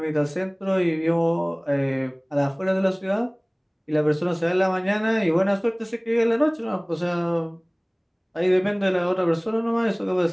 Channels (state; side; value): identical; both; correlation 1.00